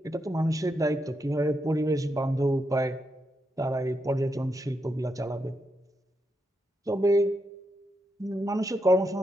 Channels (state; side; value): normal; both; correlation 0.83